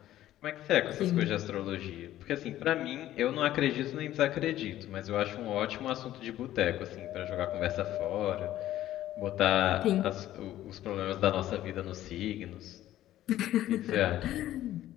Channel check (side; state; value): right; quieter; 13.5 dB